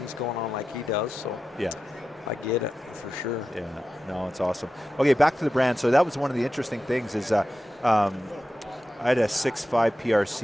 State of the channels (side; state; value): both; normal; correlation 0.92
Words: going on like he does. So I get it for sure. Yeah, no, it's awesome. Okay, back to the brand. So that was one of the interesting things is I had a 6.5